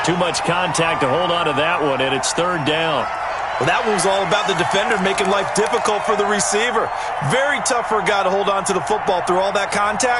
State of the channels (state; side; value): identical; both; correlation 1.00